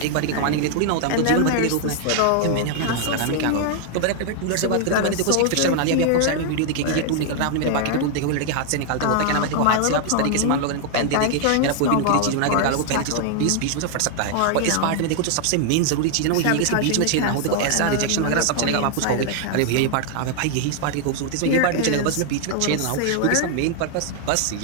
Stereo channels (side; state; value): both; different; correlation 0.00